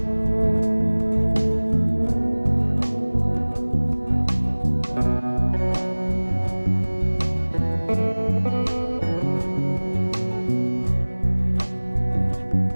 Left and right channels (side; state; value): both; inverted; correlation -1.00